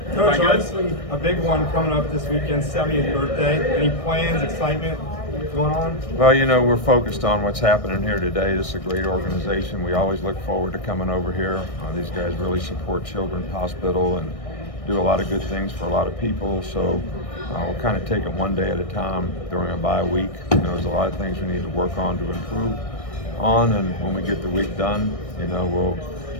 obviously a big one coming up this weekend, 70th birthday. Any plans, excitement going on? Well, you know, we're focused on what's happening here today. This is a great organization. We always look forward to coming over here. These guys really support Children's Hospital and do a lot of good things for a lot of people. So we'll kind of take it one day at a time during a bye week. You know, there's a lot of things we need to work on to improve on, and when we get the week done, you know, we'll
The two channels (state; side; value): late; right; 1.6 ms